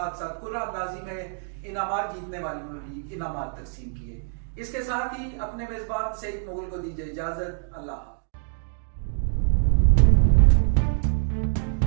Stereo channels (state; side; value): silent; left; digital silence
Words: साथ कुर्रा अंदाजी में इनामात जीतने वालों में भी इनामात तकसीम किए। इसके साथ ही अपने मेजबान सईद मुगल को दीजिए इजाजत। अल्लाह।